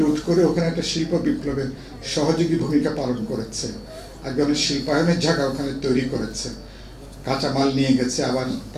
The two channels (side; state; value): both; identical; correlation 1.00